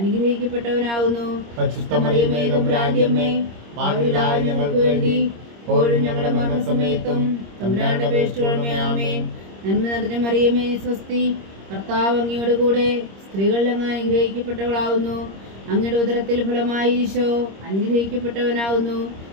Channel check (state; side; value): late; left; 26 ms